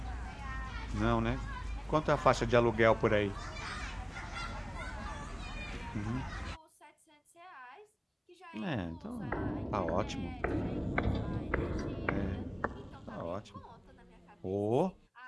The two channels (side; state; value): both; identical; correlation 1.00